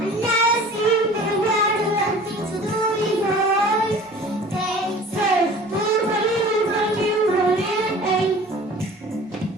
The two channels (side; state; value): both; normal; correlation 0.44